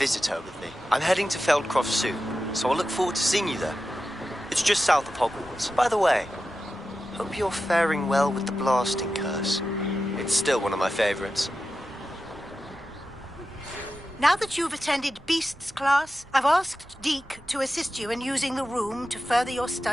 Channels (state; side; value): normal; both; correlation 0.92